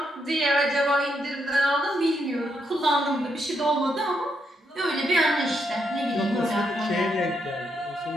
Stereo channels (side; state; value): both; normal; correlation 0.79